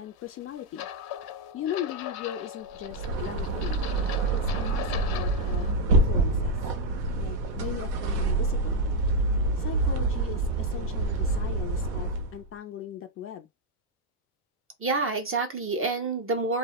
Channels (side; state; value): both; normal; correlation -0.01